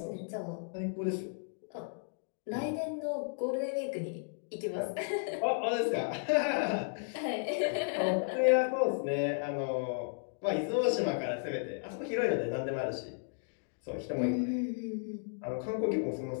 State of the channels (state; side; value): silent; right; digital silence